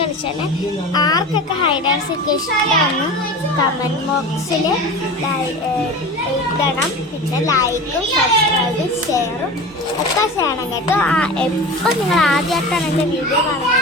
ആർക്കൊക്കെ ഹൈഡ് ആൻഡ് സീക്ക് ഇഷ്ടമാണ് കമൻറ്റ് ബോക്സിൽ ഇടണം. പിന്നെ ലൈക്കും സബ്സ്ക്രൈബും ഷെയറും ഒക്കെ ചെയ്യണം കേട്ടോ. എപ്പോൾ നിങ്ങൾ ആദ്യമായിട്ടാണ് എൻ്റെ വീഡിയോ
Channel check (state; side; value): normal; both; correlation 0.33